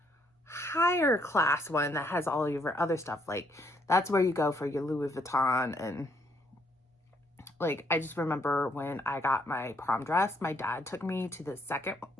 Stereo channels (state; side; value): normal; both; correlation 0.71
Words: higher class one that has all your other stuff. Like that's where you go for your Louis Vuitton. And like, I just remember when I got my prom dress, my dad took me to the